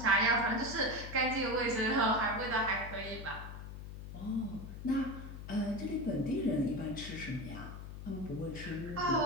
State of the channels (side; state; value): left; noise; hum, 10 dB below the sound